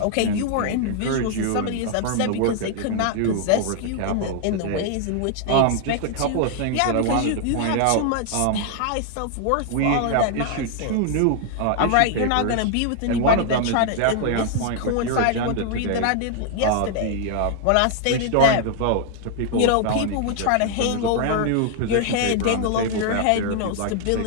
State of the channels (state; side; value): different; both; correlation 0.00